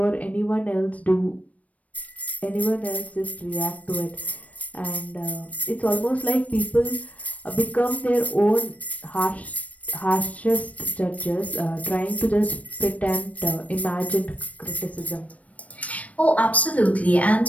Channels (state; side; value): late; right; 0.067 ms